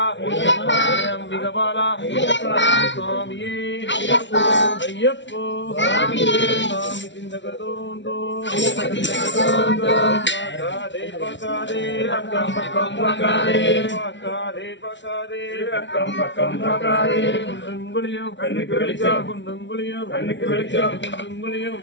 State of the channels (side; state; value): right; late; 0.53 ms